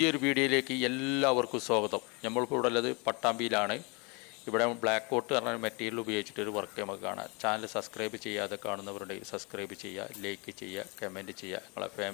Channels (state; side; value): quieter; right; 30.1 dB